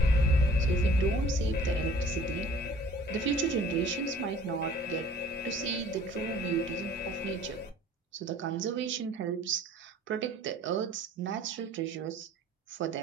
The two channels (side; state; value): both; normal; correlation 0.51